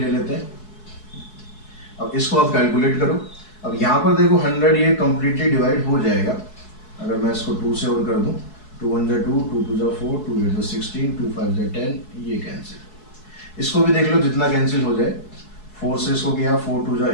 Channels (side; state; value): right; late; 4.7 ms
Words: ले लेते हैं। अब इसको आप कैलकुलेट करो, अब यहाँ पर देखो 100 ये कंप्लीटली डिवाइड हो जाएगा, अगर मैं इसको 2 से और कर दूँ, 2 1 2 2 2 4 2 8 16 2 5 10, ये कैंसिल, इसको भी देख लो जितना कैंसिल हो जाए, 4 से इसको किया 4 2